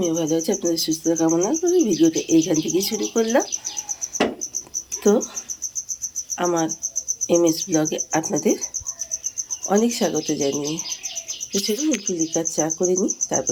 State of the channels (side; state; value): both; identical; correlation 1.00